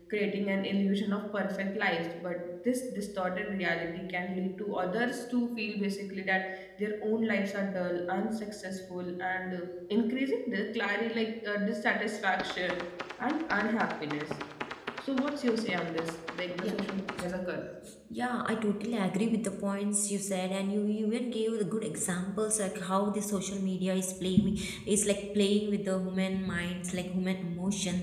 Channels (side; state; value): both; identical; correlation 1.00